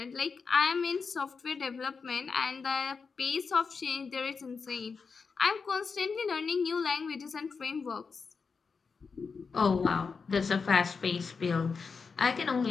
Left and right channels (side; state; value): right; quieter; 5.1 dB